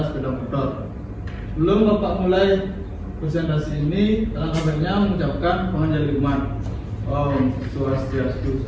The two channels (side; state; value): both; identical; correlation 1.00